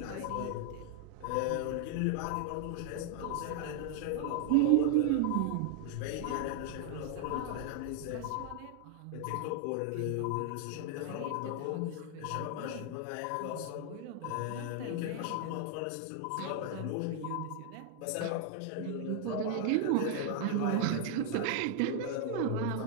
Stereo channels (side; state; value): both; different; correlation 0.00